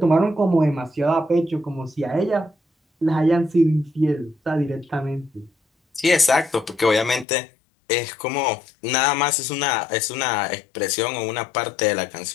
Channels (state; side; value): drops out; right; at 7.2 s